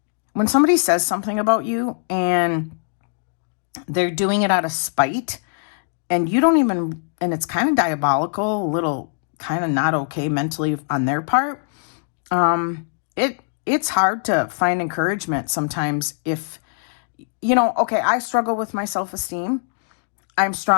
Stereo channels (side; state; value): right; silent; digital silence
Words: somebody says something about you and they're doing it out of spite and you don't even, and it's kind of diabolical, a little kind of not okay mentally on their part, it's hard to find encouragement sometimes if, okay, I struggle with my self-esteem. I'm